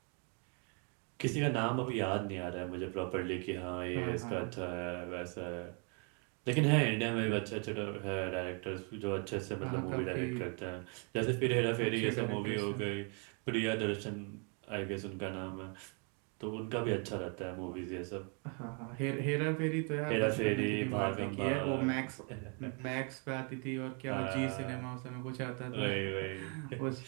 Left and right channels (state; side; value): quieter; left; 37.3 dB